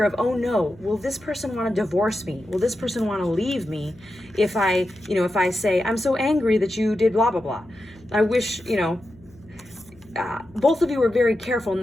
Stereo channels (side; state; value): left; noise; hum, 26 dB below the sound